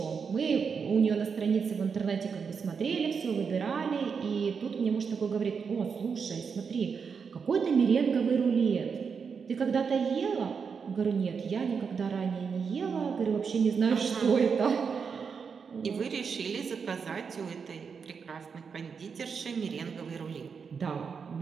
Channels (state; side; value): quieter; left; 6.0 dB